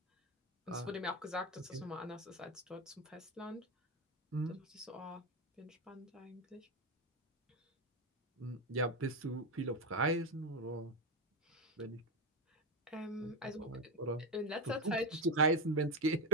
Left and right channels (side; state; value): both; normal; correlation 0.12